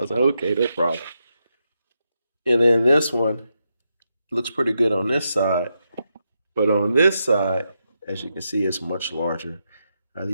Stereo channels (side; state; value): both; inverted; correlation -0.85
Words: was like, "Okay, no problem." And then this one looks pretty good on this side, but on this side, as you can see, it's much larger.